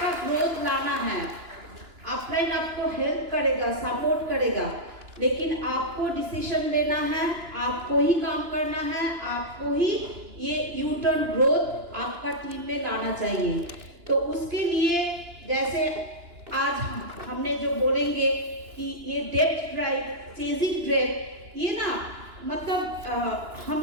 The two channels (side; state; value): left; late; 2.9 ms